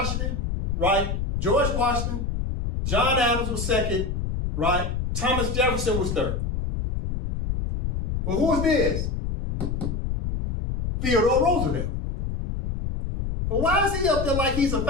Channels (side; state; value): left; noise; rumble, 2 dB below the sound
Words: right? George Washington. John Adams was second, right? Thomas Jefferson was third. Well, who is this? Theodore Roosevelt. Well, why is he up there like he's a